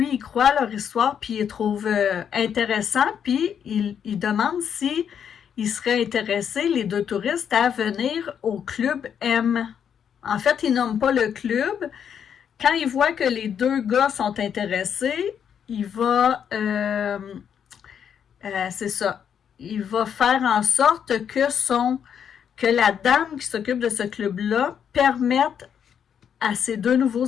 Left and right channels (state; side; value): quieter; right; 8.1 dB